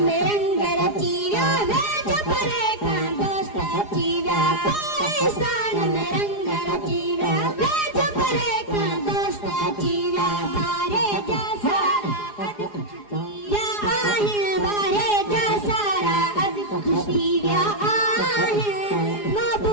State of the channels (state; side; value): late; right; 4.8 ms